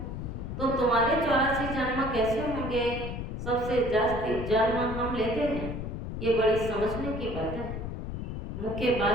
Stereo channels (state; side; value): noise; left; rumble, 6 dB below the sound